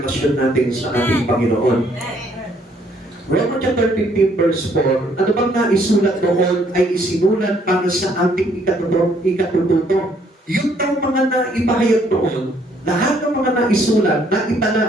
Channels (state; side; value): normal; both; correlation 0.66